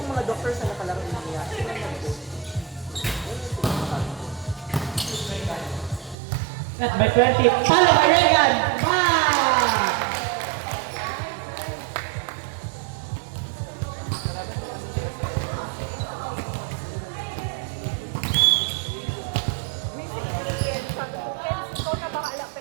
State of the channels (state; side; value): drops out; left; at 6.2 s